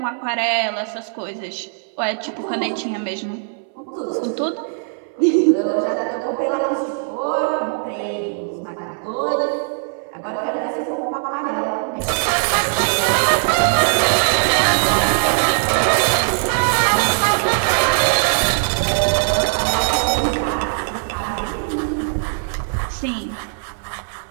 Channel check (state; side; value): silent; left; 61 dB below the other